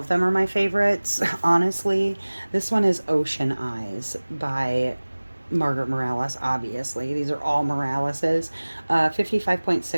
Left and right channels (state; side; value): inverted; both; correlation -1.00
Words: them are my favorites, honestly. This one is Ocean Eyes by Margaret Morales, obviously. These are all Moraleses.